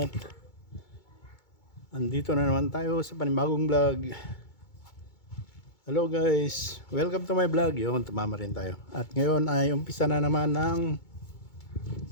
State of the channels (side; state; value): right; late; 2.2 ms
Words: andito na naman tayo sa panibagong vlog. Hello guys, welcome to my vlog. Yun, tumama rin tayo. At ngayon ay umpisa na naman ng